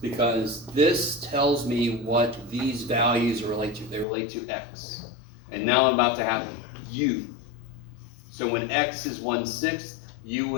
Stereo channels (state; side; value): drops out; right; at 4.0 s